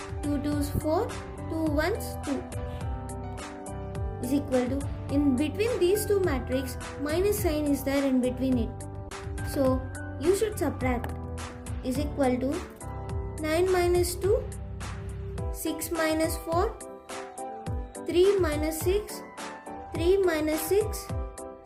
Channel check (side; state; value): both; identical; correlation 1.00